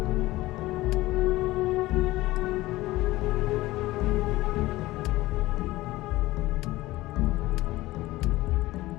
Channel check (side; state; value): right; quieter; 18.1 dB